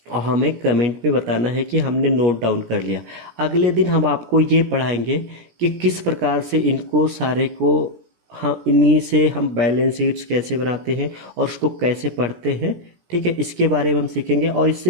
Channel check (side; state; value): left; late; 17 ms